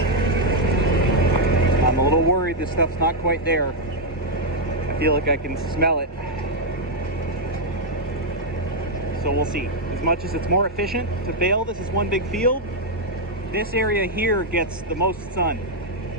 I'm a little worried this stuff's not quite there. I feel like I can smell it. So we'll see. As much as it's more efficient to bale, this is one big field. This area here gets the most sun,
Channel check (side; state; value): both; normal; correlation -0.02